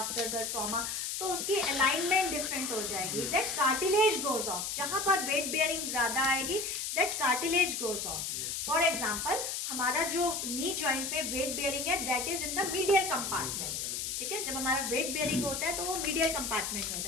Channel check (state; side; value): noise; left; hiss, 3 dB below the sound